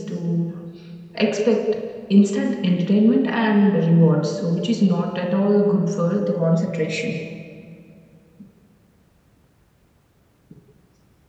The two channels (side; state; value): both; identical; correlation 1.00